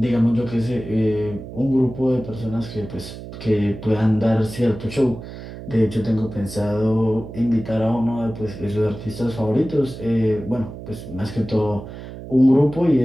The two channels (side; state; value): right; noise; hum, 12 dB below the sound